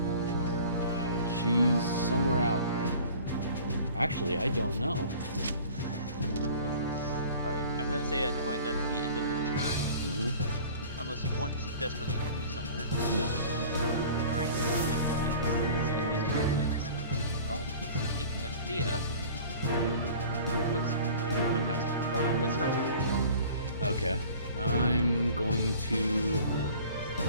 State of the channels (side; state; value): both; inverted; correlation -0.45